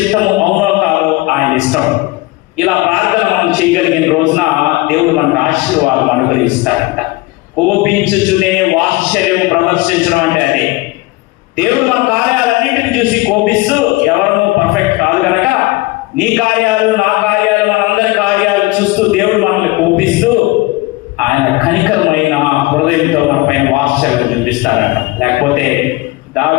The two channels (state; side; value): quieter; right; 21.3 dB